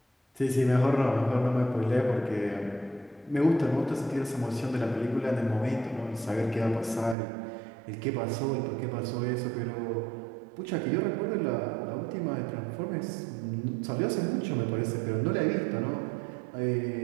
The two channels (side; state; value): left; drops out; at 7.2 s